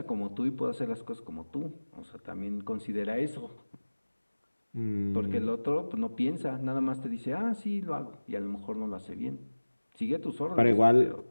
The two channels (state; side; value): inverted; both; correlation -1.00